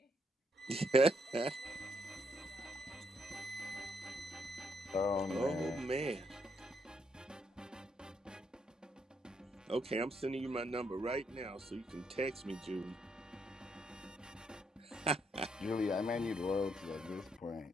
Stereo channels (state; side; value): normal; both; correlation 0.75